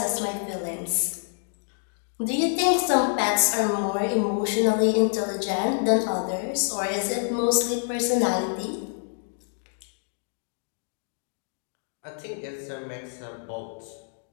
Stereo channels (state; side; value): silent; right; digital silence